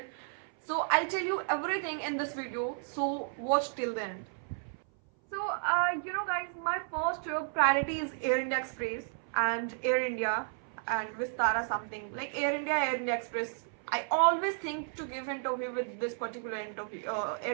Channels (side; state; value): left; silent; 56 dB below the other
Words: So I'll tell you everything in this video. So watch till the end. So, guys, my first priority is Air India Express and Air India and Vistara something like Air India Express. I always think to give interview with this particular interview